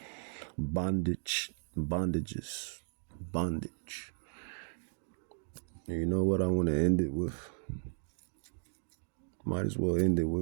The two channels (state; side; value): silent; left; digital silence